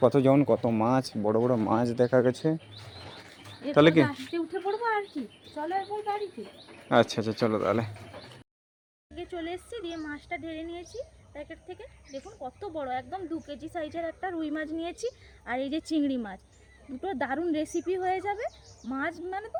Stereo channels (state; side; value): identical; both; correlation 1.00